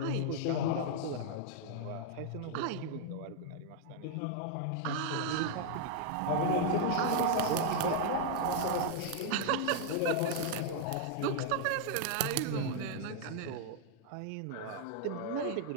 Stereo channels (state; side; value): different; both; correlation -0.01